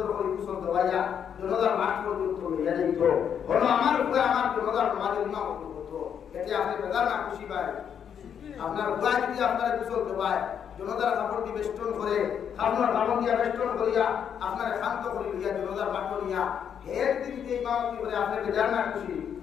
করে কুশল দেওয়াইয়া জনতার মাঠ পর্যন্ত লইয়া যাইত হলো আমার উপরে আমার জনতার সমাজের ইমাম করতো এতে আপনি বেদার না খুশি পায় আপনার উপায় যদি আপনার কুশল দেওয়ায় জনতার কাপড় দিয়ে বেষ্টন করে আপনার কাপড় দিয়া বেষ্টন করিয়া আপনার শান্ত করে লইয়া জনতার মাঠ নিয়া হের দিন যে ইমামতি করে আপনি বেদার না খুশি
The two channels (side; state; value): right; quieter; 8.2 dB